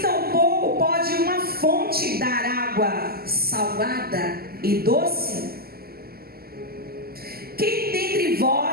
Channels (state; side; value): late; left; 0.45 ms